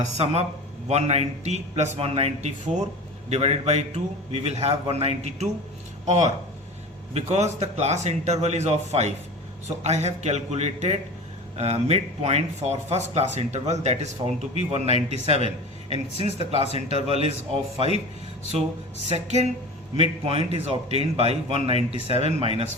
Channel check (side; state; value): both; normal; correlation 0.33